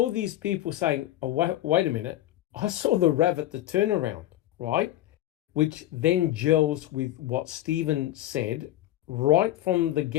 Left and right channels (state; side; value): quieter; right; 14.1 dB